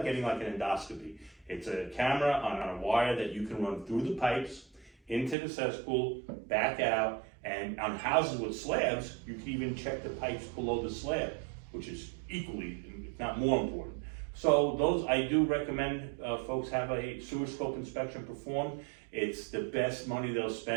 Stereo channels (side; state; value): left; drops out; at 5.4 s